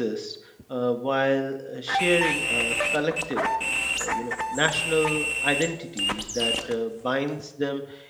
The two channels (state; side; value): identical; both; correlation 1.00